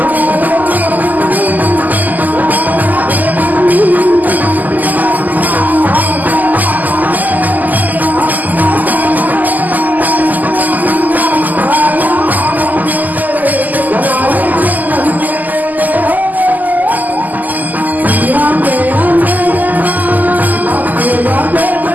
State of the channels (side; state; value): left; late; 0.082 ms